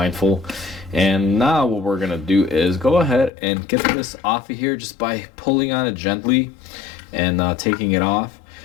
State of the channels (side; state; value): right; drops out; at 3.3 s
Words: And now what we're gonna do is go ahead and get this off of here just by pulling on it gently and taking it off.